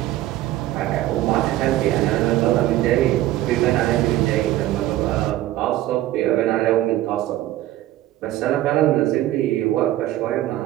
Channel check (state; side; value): quieter; left; 14.8 dB